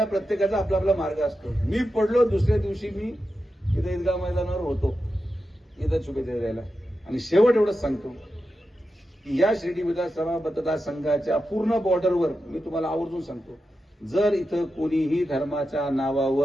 प्रत्येकाचा आपला आपला मार्ग असतो. मी पडलो, दुसऱ्या दिवशी मी इथं ईदगाह मैदानावर होतो इथं शुभेच्छा द्यायला. आणि शेवट एवढंच सांगतो की या शिर्डी विधानसभा मतदारसंघाच्या पूर्ण बॉर्डरवर मी तुम्हाला आवर्जून सांगतो, जर इथं कोणीही धर्माच्या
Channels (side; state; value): both; normal; correlation 0.90